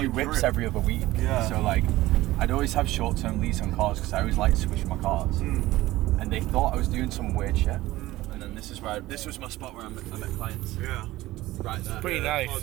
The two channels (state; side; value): quieter; left; 17.2 dB